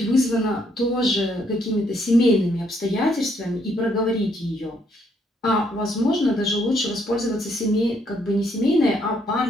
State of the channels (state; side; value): normal; both; correlation 0.71